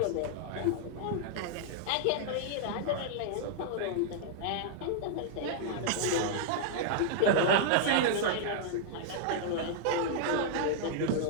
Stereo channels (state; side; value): different; both; correlation -0.01